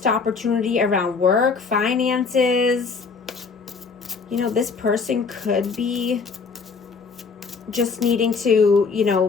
opportunity around work, finances. This person could be just needing to,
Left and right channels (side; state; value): right; quieter; 4.9 dB